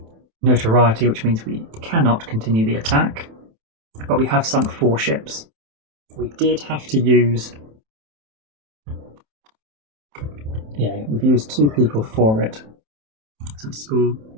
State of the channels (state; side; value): late; left; 27 ms